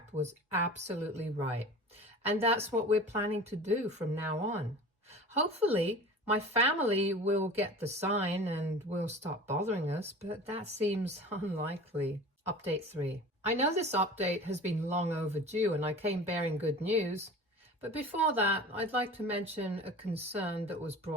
was absolutely right. And that's what we're planning to do from now on. Hopefully, my family will get the sign and will stop bothering us, but that seems unlikely. Update 3. I know this update has been long overdue and I came bearing good news. But before that, I'd like to mention a concern that was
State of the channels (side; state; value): both; normal; correlation 0.38